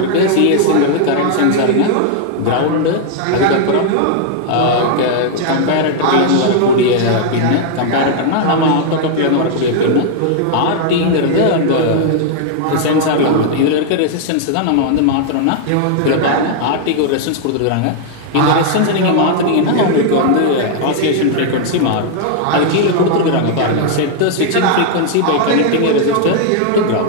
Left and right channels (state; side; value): different; both; correlation -0.01